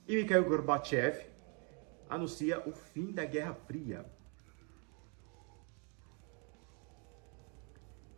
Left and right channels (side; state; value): left; quieter; 36.0 dB